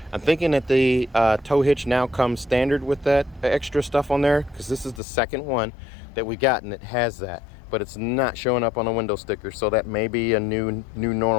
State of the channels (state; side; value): drops out; right; at 5.0 s